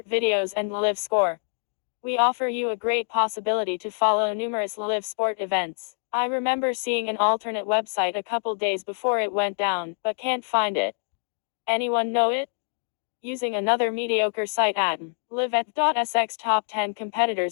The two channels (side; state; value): right; silent; digital silence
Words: videos, and live score. We offer you a great possibility to follow numerous live sport events. I remember seeing an alternate website a couple days before it went down, but can't find it. Anyone know it? Using another mediocre site at live@sx. Top 10